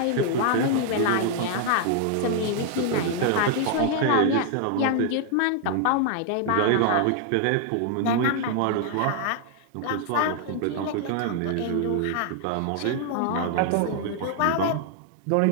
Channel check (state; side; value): different; both; correlation 0.00